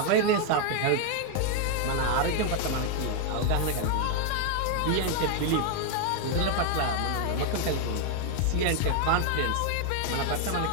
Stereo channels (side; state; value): both; different; correlation 0.00